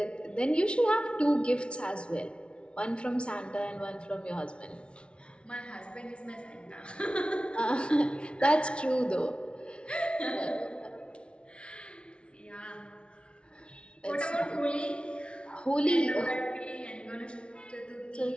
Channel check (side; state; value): right; late; 0.058 ms